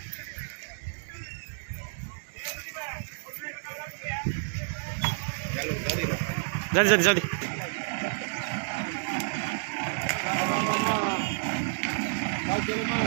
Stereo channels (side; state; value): left; silent; digital silence